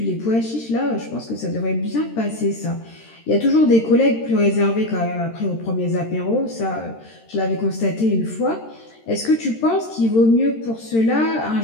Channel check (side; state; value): right; late; 13 ms